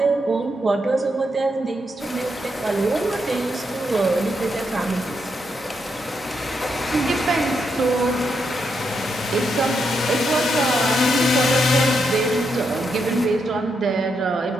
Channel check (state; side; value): normal; both; correlation 0.81